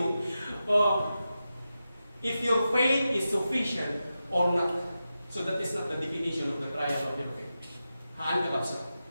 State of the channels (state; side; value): inverted; both; correlation -0.91